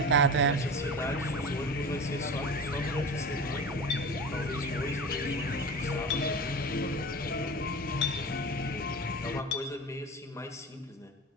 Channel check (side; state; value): both; normal; correlation 0.31